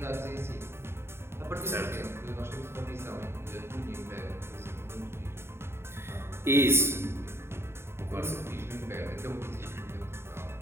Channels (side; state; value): left; late; 0.12 ms